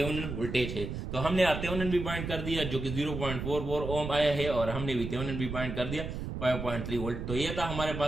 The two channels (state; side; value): noise; right; rumble, 6 dB below the sound